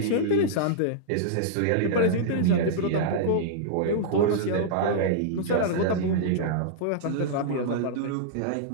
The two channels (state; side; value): different; both; correlation -0.02